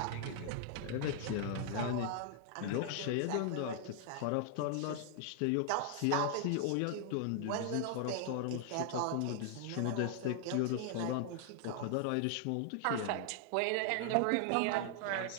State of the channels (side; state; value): both; different; correlation 0.00